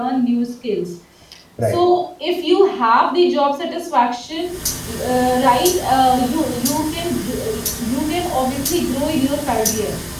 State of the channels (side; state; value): both; identical; correlation 1.00